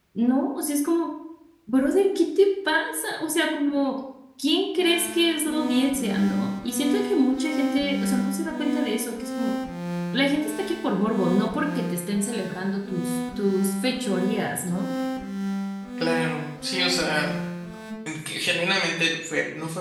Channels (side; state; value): both; identical; correlation 1.00